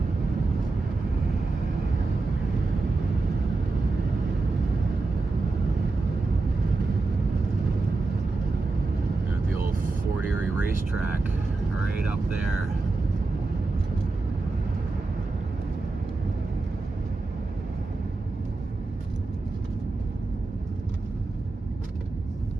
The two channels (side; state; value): left; quieter; 3.5 dB